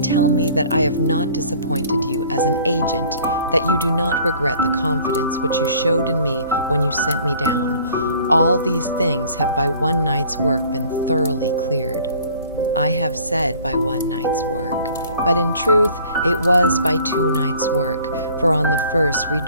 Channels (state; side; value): inverted; both; correlation -0.52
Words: tell me that I have not disappointed you as an agent, that you do not regret the confidence which you showed in me when you sent me down. All these things have by one night's work been thoroughly cleared. I have said by one night's work, but in truth it was by 2 nights' work, for on the first we